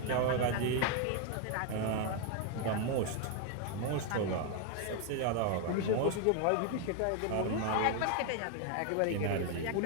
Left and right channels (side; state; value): both; different; correlation 0.01